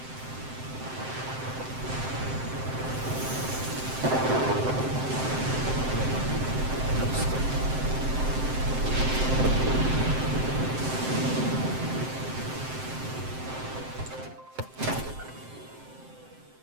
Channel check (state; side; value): late; left; 7.7 ms